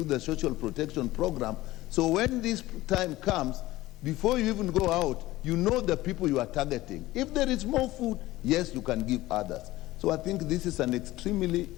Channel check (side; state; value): right; quieter; 17.5 dB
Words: the social protection program. So when this time comes, before you even go out, you know the people you are targeting. If there is more food, yes, you can give others. So I think this is an extremely